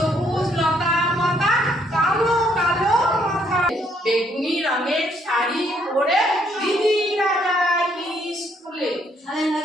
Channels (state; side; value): normal; both; correlation 0.69